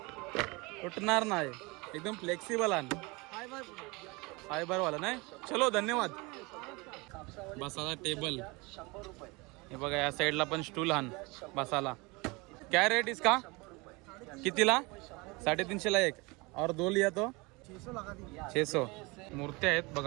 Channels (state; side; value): quieter; left; 25.8 dB